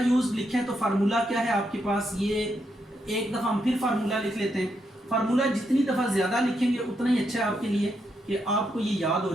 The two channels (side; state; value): both; normal; correlation 0.80